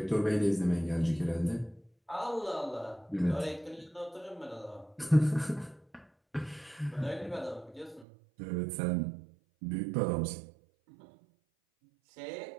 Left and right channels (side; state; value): left; drops out; at 8.1 s